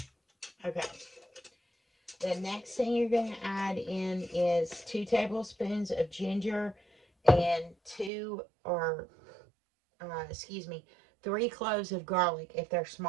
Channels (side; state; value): left; drops out; at 8.1 s